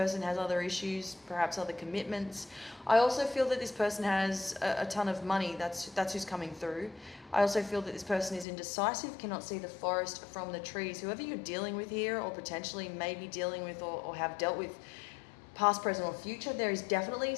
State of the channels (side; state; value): right; drops out; at 8.5 s